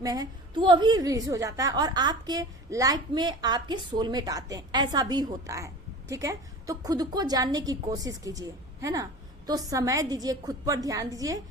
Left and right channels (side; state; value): both; normal; correlation 0.37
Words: में है, तो वो भी रिलीज हो जाता है और आपके लाइफ में आपके सोलमेट आते हैं, ऐसा भी होता है। ठीक है, तो खुद को जानने की कोशिश कीजिए, है ना। तो समय दीजिए, खुद पर ध्यान दीजिए,